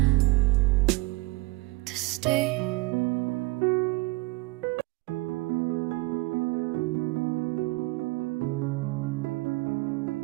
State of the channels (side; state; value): left; quieter; 23.6 dB